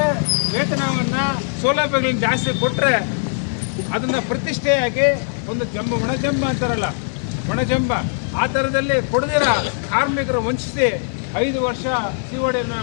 ವೇತನವನ್ನು ಸೌಲಭ್ಯಗಳನ್ನ ಜಾಸ್ತಿ ಕೊಟ್ಟರೆ ಅದನ್ನು ಪ್ರತಿಷ್ಠೆಯಾಗಿ ಒಂದು ಒಣಜಂಬ ಅಂತಾರಲ್ಲ, ಒಣಜಂಬ ಆ ಥರದಲ್ಲಿ ಕೊಡದಿರ ಕಾರ್ಮಿಕರು ವಂಚಿಸಿ 5 ವರ್ಷ CODಯನ್ನು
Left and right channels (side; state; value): right; silent; digital silence